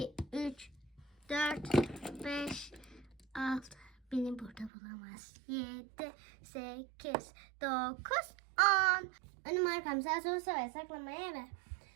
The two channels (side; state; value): left; drops out; at 4.7 s